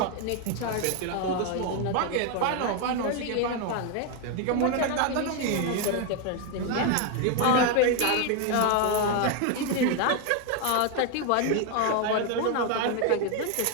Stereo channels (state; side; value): different; both; correlation 0.01